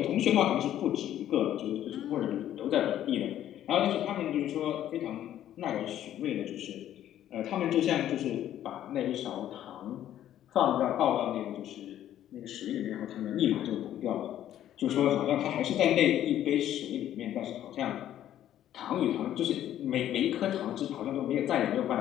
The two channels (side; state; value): right; quieter; 11.7 dB